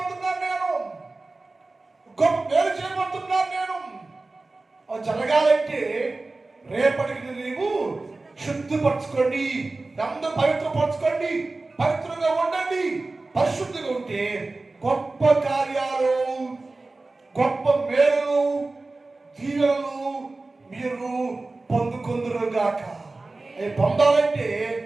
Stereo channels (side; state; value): left; quieter; 3.3 dB